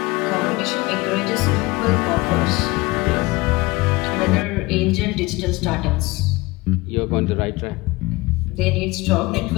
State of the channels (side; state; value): right; quieter; 22.0 dB